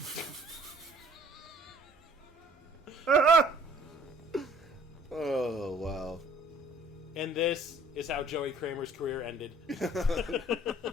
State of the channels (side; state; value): both; normal; correlation 0.55